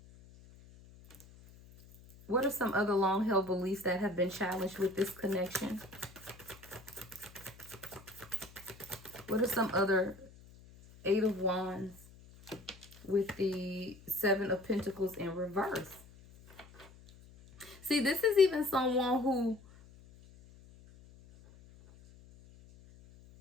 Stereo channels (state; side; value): noise; left; hum, 22 dB below the sound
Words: What are some other long-held beliefs that have been challenged with this connection? What are some other Eight of Wands with the Seven of Pentacles in reverse? See, this is even someone who,